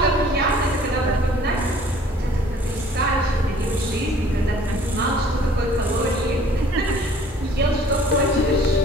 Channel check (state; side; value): normal; both; correlation 0.54